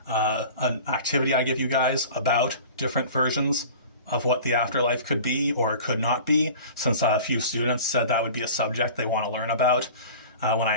an activity I give you guys about different versions of what the afterlife could be or could not be, since a few students said that would be a subject they want to learn about when I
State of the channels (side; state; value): both; inverted; correlation -0.40